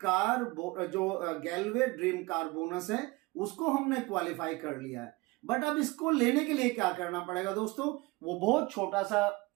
कार जो गैलवे ड्रीम कार बोनस है उसको हमने क्वालिफाई कर लिया है। बट अब इसको लेने के लिए क्या करना पड़ेगा दोस्तों, वो बहुत छोटा सा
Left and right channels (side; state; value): left; quieter; 23.4 dB